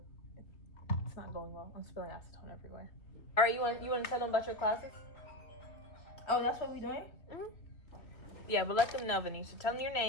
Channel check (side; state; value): right; late; 3.0 ms